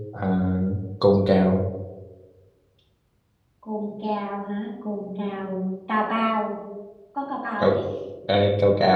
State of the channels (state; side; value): identical; both; correlation 1.00